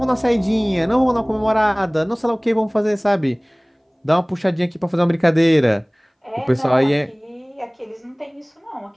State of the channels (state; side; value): identical; both; correlation 1.00